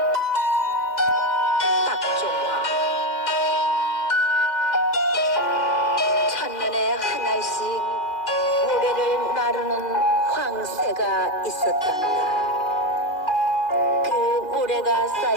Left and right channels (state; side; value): late; right; 2.4 ms